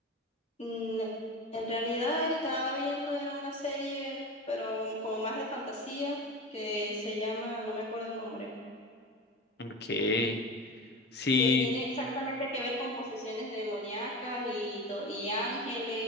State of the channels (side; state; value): both; normal; correlation 0.28